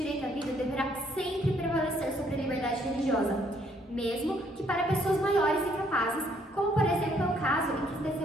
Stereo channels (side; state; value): both; normal; correlation 0.67